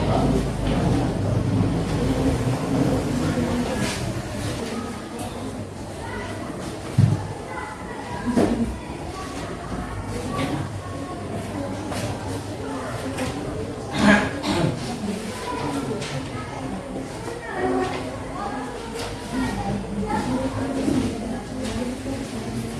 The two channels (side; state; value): both; identical; correlation 1.00